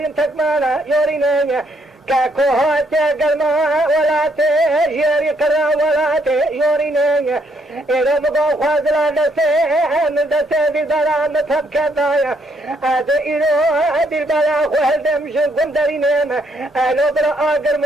تكمانا يورينا كاكوهات قلما ولا تجري قرا ولا تجرينا إذا مقام خازلا نسيحن دسي بالبلا نتب كذايا هذا إلو بالبلا خوال دمش قندرينينا ألو بلا آقر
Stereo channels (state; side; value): normal; both; correlation 0.72